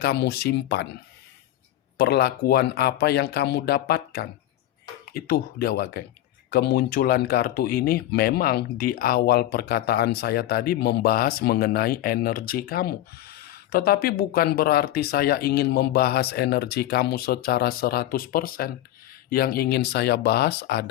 simpan? Perlakuan apa yang kamu dapatkan? Itu dia, Wak Geng. Kemunculan kartu ini memang di awal perkataan saya tadi membahas mengenai energi kamu. Tetapi bukan berarti saya ingin membahas energi kamu secara 100%. Yang ingin saya bahas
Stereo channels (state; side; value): quieter; right; 13.7 dB